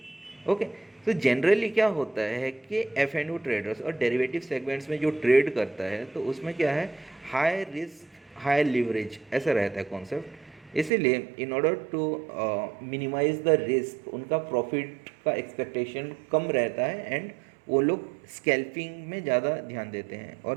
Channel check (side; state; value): left; drops out; at 10.9 s